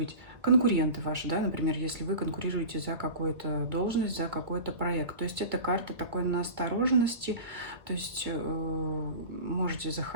Конкуренты ваши, да, например, если вы конкурируете за какую-то должность, за какой-то проект. То есть это карта такой настороженности, то есть можете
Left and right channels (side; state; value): left; late; 1.7 ms